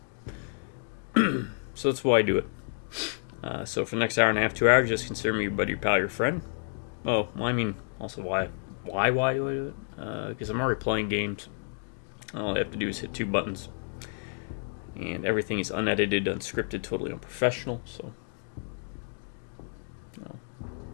So that's why I do it. So for the next hour and a half, 2 hours, just consider me your buddy, your pal, your friend. Oh, well, I mean, also why do I do it? Because I'm already playing games. All I have to do is hit 2 buttons. And everything is unedited, unscripted, totally unprofessional. So,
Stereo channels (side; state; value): right; silent; digital silence